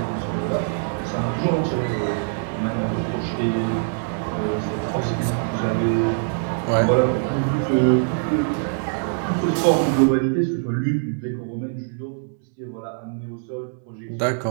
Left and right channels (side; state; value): left; silent; digital silence